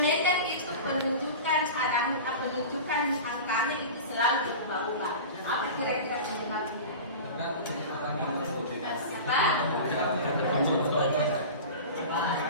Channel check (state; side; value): inverted; both; correlation -0.33